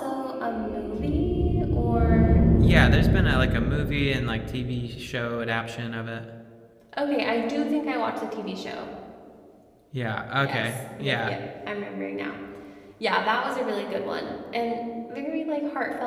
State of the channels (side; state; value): both; identical; correlation 1.00